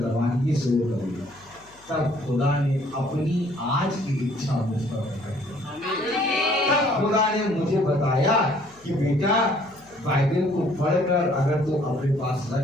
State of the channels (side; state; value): left; noise; hum, 28 dB below the sound